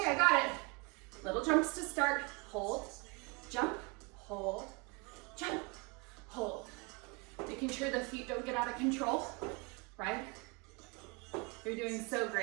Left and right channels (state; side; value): quieter; left; 28.9 dB